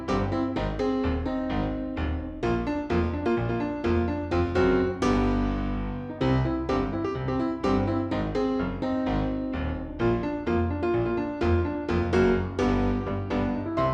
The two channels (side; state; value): both; identical; correlation 1.00